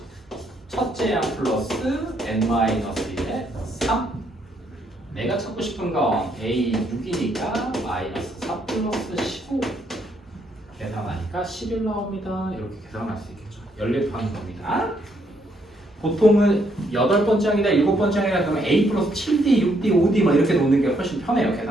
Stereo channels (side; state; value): both; normal; correlation 0.73